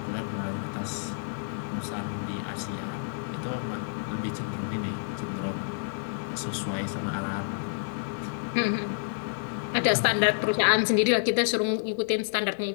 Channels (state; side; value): silent; right; digital silence